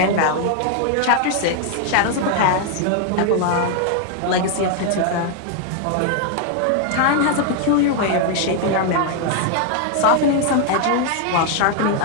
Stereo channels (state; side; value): different; both; correlation 0.00